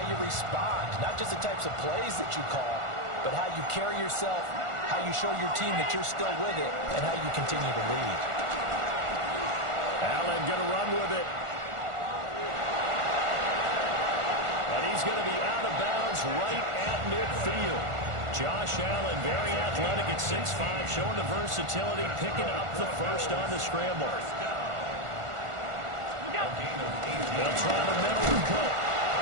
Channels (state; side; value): late; left; 1.4 ms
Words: you respond, not just the types of plays that you call, but how you carry yourself, how you show your team that you're still with it, and how you continue to lead. Allen going to run with it. And he's going to be out of bounds right at midfield. Josh Allen, very athletic at 6'5", showing the versatility, picking up the first on the scramble. They'll try the middle with Cook.